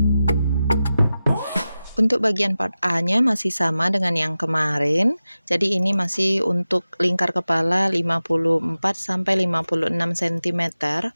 Untuk bagian part A-nya masih sama dengan yang kemarin. Jadi ini masih untuk lingkar kepala 54 sampai 56 cm.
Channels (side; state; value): both; inverted; correlation -0.94